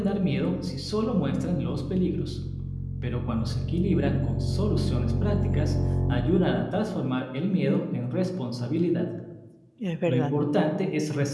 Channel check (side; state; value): both; identical; correlation 1.00